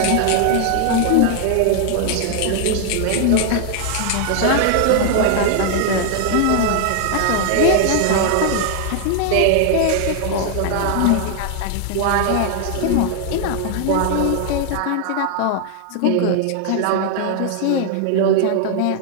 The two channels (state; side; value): different; both; correlation 0.00